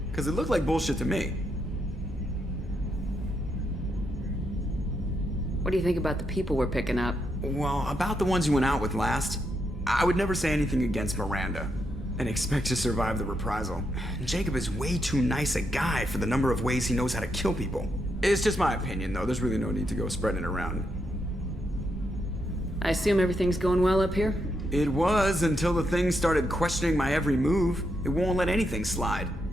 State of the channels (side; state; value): both; normal; correlation 0.81